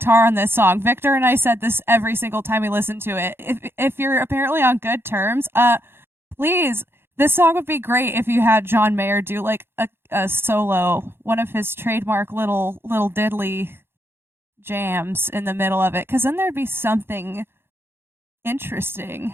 on this song. Victor and I said this every single time we listened to it. If you're apparently on good terms, please, this song would be great if you had John Mayer do like a solo, one of his trademark little diddly jams in the middle of it, because then there'd be something interesting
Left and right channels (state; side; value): late; left; 0.11 ms